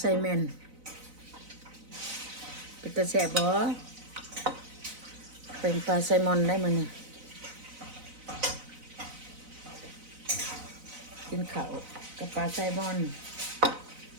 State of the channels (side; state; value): left; late; 4.0 ms